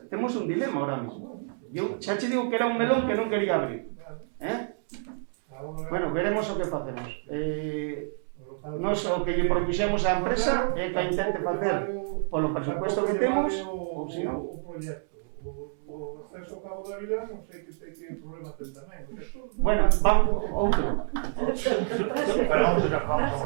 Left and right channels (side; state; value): left; silent; 59 dB below the other